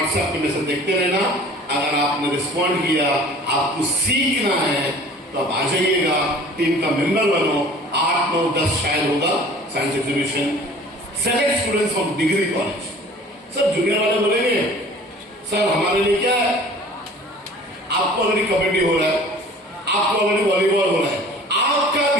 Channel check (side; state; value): both; normal; correlation 0.46